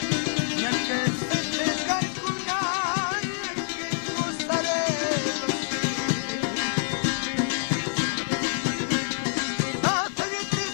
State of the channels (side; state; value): right; silent; digital silence